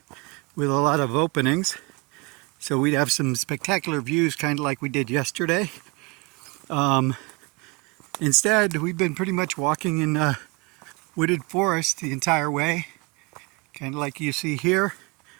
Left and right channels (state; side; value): quieter; left; 27.9 dB